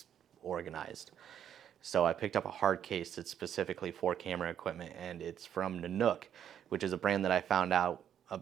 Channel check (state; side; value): quieter; left; 9.5 dB